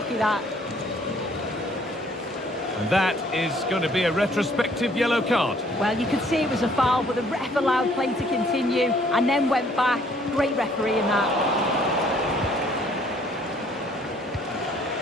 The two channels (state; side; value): normal; both; correlation 0.61